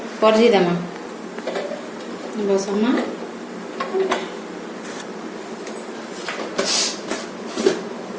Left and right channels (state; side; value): identical; both; correlation 1.00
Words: परजी देमा। बसमा